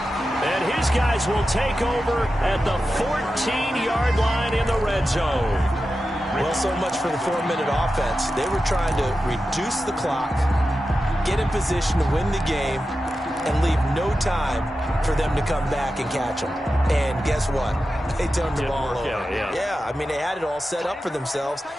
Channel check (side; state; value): both; normal; correlation 0.92